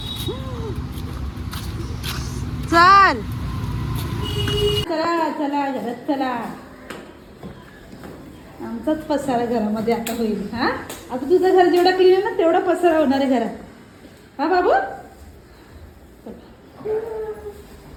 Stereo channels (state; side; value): identical; both; correlation 1.00